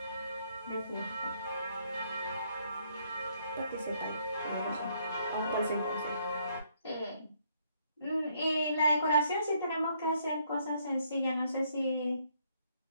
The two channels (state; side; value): inverted; both; correlation -0.69